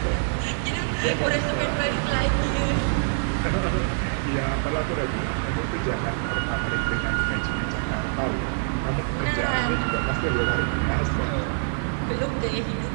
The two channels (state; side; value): silent; left; digital silence